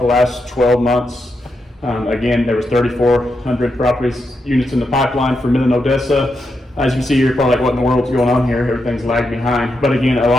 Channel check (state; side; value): normal; both; correlation 0.84